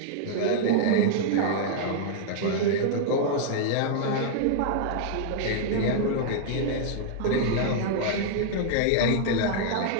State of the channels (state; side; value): different; both; correlation -0.01